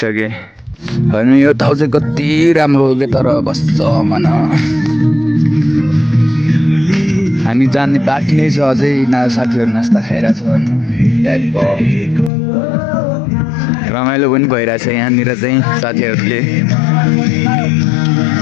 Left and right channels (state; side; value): drops out; right; at 12.3 s